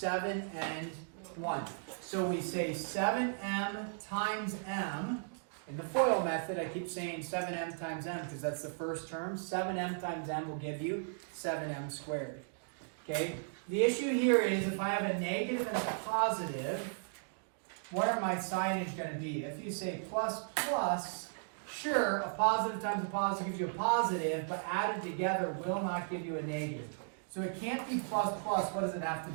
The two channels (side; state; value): left; silent; digital silence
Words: and 1. So we say 7m times m. In the FOIL method, I keep saying 7m times m because that's the first term. 7m times m will give you 7m squared. Okay? The issue here is if I have a negative and a positive, what are my signage going to be? If you say plus plus, sure, a positive times a positive gives you a positive, but added together will not give you a negative. So it can't be plus plus. What does it have to